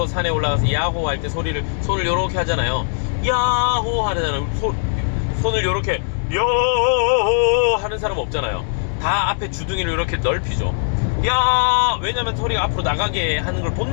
산에 올라가서 야호 할 때 손을 요렇게 하잖아요. 야호 하잖아요. 손을 요렇게 야호 하는 사람 없잖아요. 다 앞에 주둥이를 이렇게 넓히죠. 왜냐면 소리가 앞으로 나가게 하는 걸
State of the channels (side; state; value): right; silent; digital silence